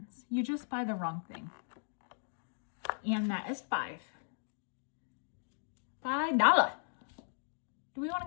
You just buy the wrong thing. And that is $5. Do we want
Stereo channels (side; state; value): right; silent; digital silence